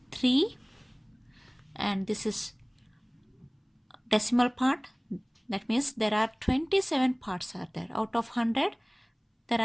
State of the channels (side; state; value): both; identical; correlation 1.00